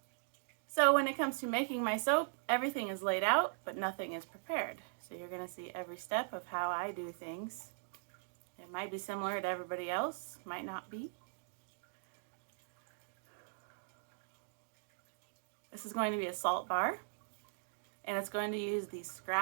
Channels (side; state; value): left; silent; digital silence